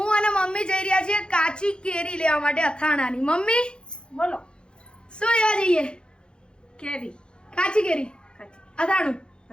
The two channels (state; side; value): late; right; 0.051 ms